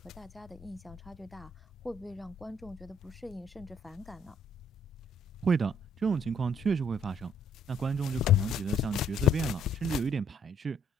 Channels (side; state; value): both; normal; correlation 0.65